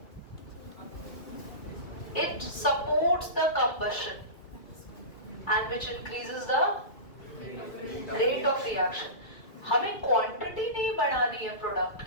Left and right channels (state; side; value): late; right; 2.4 ms